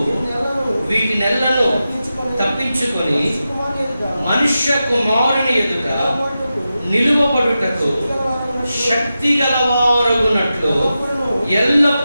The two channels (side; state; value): both; inverted; correlation -0.91